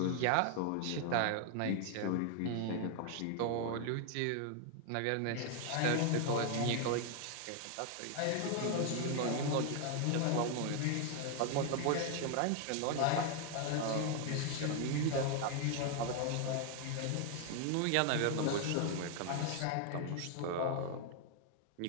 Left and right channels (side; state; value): both; different; correlation 0.00